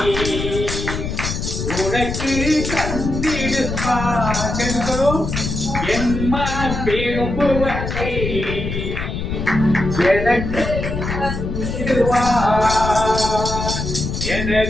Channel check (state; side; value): noise; left; rumble, 4 dB below the sound